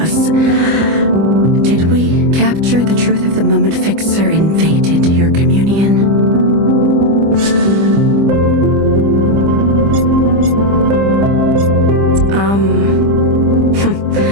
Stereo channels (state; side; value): late; left; 25 ms